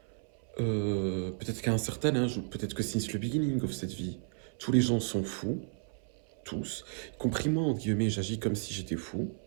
peut-être qu'à un certain âge, ou peut-être que since le beginning of cette vie, tous les gens sont fous, tous, y compris moi, entre guillemets, j'agis comme si j'étais fou.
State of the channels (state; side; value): silent; left; 56 dB below the other